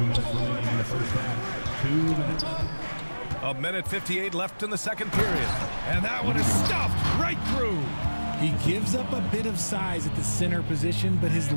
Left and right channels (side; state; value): both; inverted; correlation -1.00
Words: remaining in the first half. 2 minutes. A minute 58 left in the second period. And that one is stuffed right through. He gives up a bit of size at the center position, but his